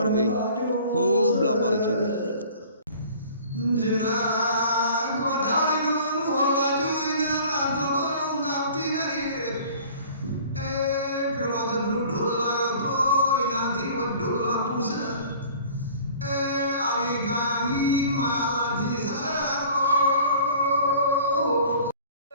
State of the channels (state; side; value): inverted; both; correlation -0.47